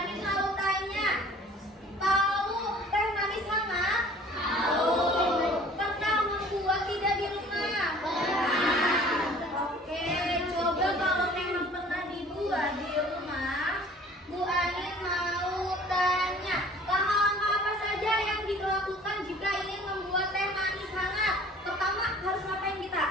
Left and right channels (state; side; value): normal; both; correlation 0.50